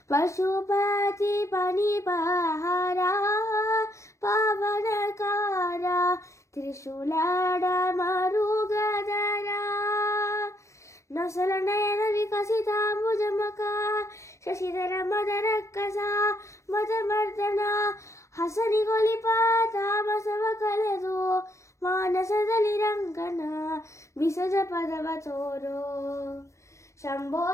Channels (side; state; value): right; late; 0.14 ms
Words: पशुपति पनिपहारा पावनकारा त्रिशूलाड मरुगधरा नसल नयन विकसिताम्बुजमका शशिधर मदरಕ್ಕಸ ಮದಮರ್ದನ ಹಸನಿಗೊಲಿಪ ತಾಮಸವ ಕಲೆದು ಮಾನಸದಲ್ಲಿ ರಂಗನ ಬಿಸಜ ಪದವ ತೋರೋ ಶಂಭೋ